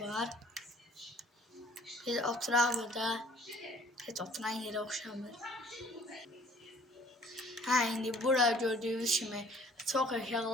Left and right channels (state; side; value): normal; both; correlation 0.54